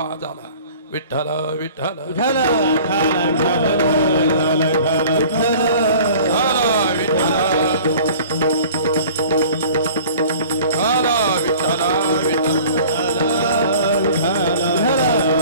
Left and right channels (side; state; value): both; inverted; correlation -0.46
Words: आला. विठ्ठल विठ्ठल विठ्ठल